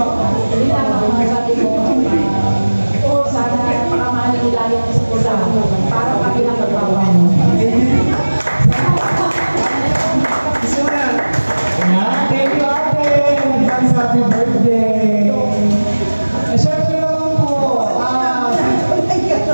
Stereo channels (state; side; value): inverted; both; correlation -1.00